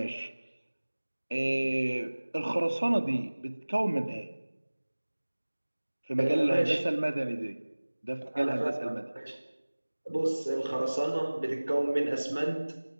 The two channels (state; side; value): inverted; both; correlation -1.00